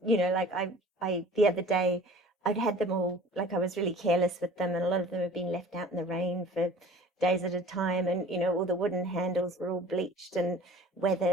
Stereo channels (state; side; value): normal; both; correlation 0.46